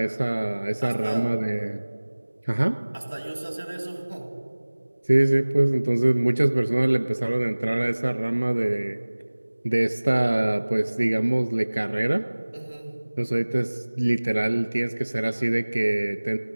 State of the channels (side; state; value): both; inverted; correlation -1.00